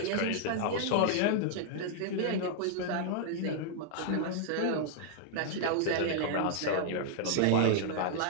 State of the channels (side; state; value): both; different; correlation -0.01